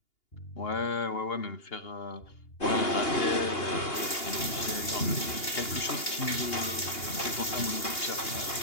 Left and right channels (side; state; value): right; late; 2.8 ms